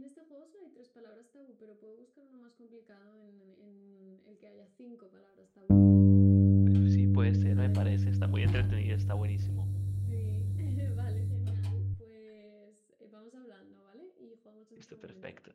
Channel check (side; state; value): both; identical; correlation 1.00